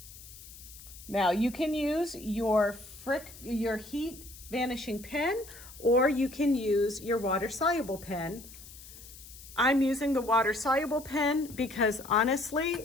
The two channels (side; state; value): left; noise; hiss, 17 dB below the sound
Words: Now you can use your heat vanishing pen, or you can use your water soluble pen. I'm using the water soluble pen because